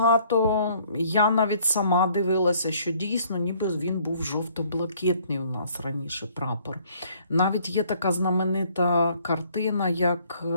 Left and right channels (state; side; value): inverted; both; correlation -0.61